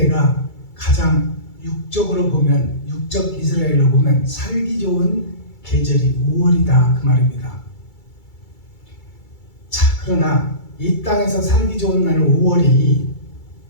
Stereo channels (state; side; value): late; right; 2.3 ms